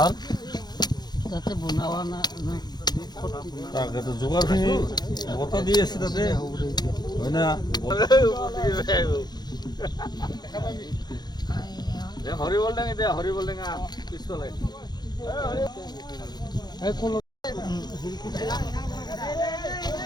তাতে বনোৱা তাকেতো যোগাৰখিনি বতা দি আছে তাতে হয় না। হৰিবল টেঙা দে, হৰিবল টেঙা পিছফালে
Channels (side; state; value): right; late; 0.20 ms